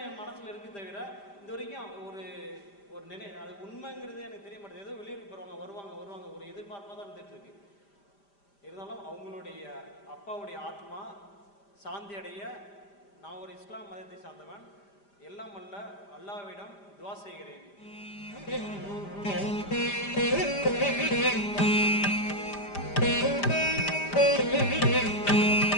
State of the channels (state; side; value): late; right; 5.0 ms